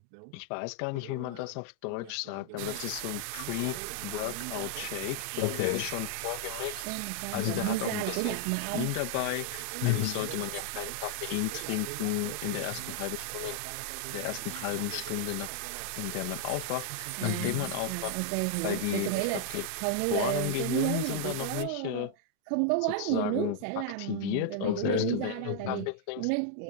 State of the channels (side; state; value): both; different; correlation 0.00